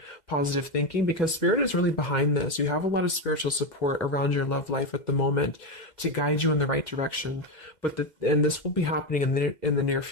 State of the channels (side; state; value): right; late; 2.1 ms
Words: positive thinking because Spirit is really behind this. You have a lot of spiritual support around your love life at the moment to guide you in the right direction. And this will be happening in the near